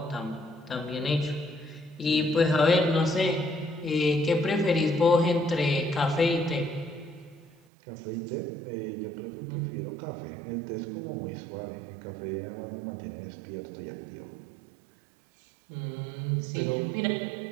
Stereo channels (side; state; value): left; drops out; at 7.6 s